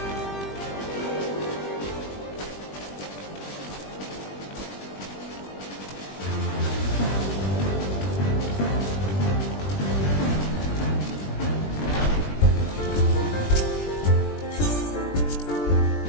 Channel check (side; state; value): right; late; 20 ms